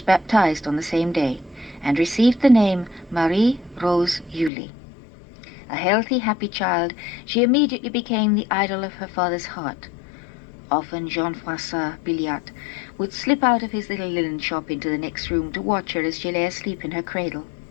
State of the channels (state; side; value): drops out; right; at 4.5 s